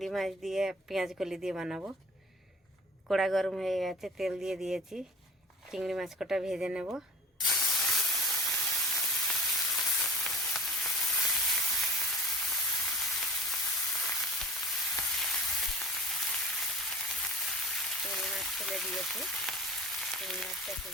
মাছ দিয়ে পেঁয়াজ কলি দিয়ে বানাবো। কড়া গরম হয়ে গেছে, তেল দিয়ে দিয়েছি। চিংড়ি মাছ কটা ভেজে নেব। চিংড়ি মাছ ফেলে দিয়েছি, চিংড়ি মাছটা একটু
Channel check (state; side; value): normal; both; correlation 0.39